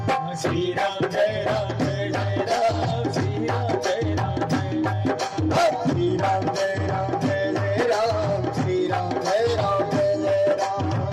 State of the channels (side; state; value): both; identical; correlation 1.00